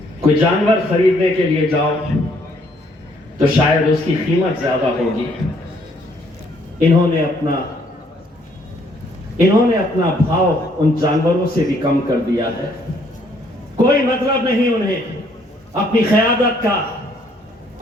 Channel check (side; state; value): both; normal; correlation 0.66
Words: कोई जानवर खरीदने के लिए जाओ तो शायद उसकी कीमत ज्यादा होगी। इन्होंने अपना भाव उन जानवरों से भी कम कर दिया है। कोई मतलब नहीं उन्हें अपनी क़यादत का,